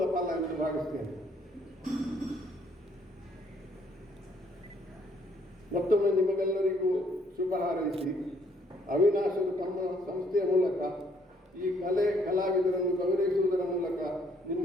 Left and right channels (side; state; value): both; normal; correlation 0.66